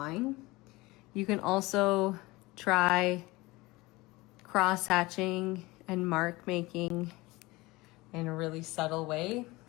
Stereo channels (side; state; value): right; quieter; 21.5 dB